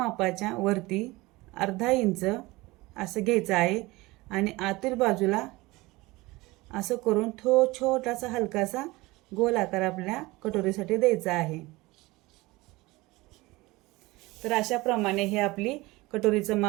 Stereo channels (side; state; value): left; quieter; 21.4 dB